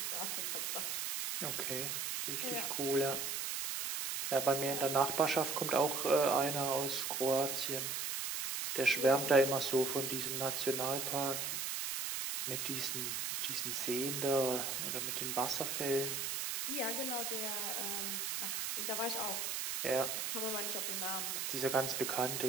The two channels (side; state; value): right; noise; hiss, 1 dB below the sound